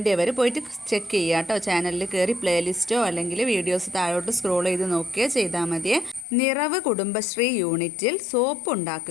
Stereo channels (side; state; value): right; drops out; at 6.2 s